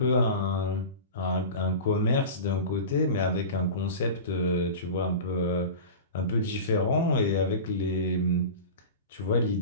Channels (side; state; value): both; inverted; correlation -0.31